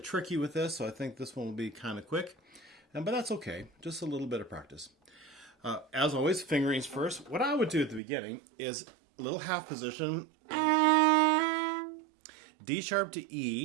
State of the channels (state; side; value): drops out; left; at 8.0 s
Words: with this, so I think this one will be kind of quick, but that's okay. Just a little bit of practice. As always, fingerings first. What I would do at the beginning is a little half position, D sharp to